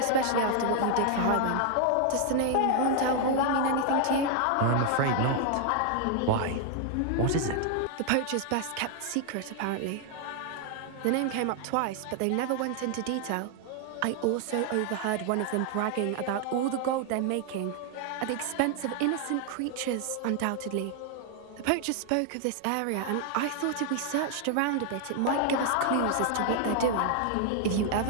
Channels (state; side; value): different; both; correlation 0.00